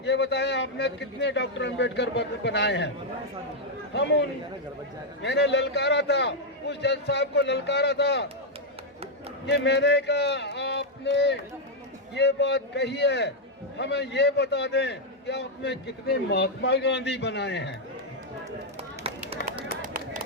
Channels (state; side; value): normal; both; correlation -0.01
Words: ये बताएं आपने कितने डॉक्टर अंबेडकर बनाए हैं। मैंने ललकारा था, उस जज साहब को ललकारा था कि मैंने कहा आपने ये बात कही है, हमें ये बता दें कि आपने कितने महात्मा गांधी बनाए हैं।